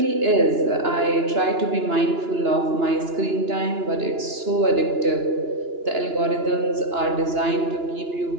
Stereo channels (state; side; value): late; left; 2.9 ms